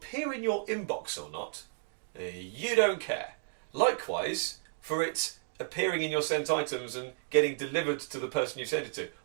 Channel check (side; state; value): left; silent; digital silence